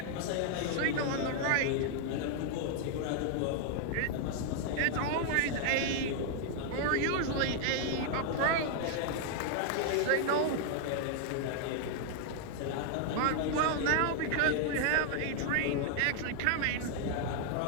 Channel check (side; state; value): both; different; correlation 0.00